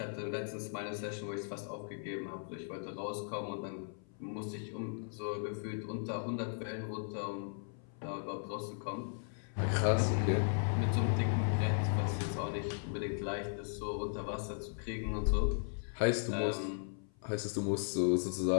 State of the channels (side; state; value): right; silent; 53 dB below the other